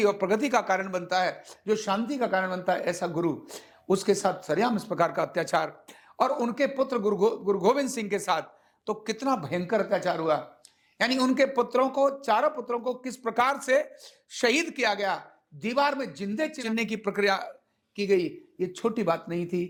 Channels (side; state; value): both; identical; correlation 1.00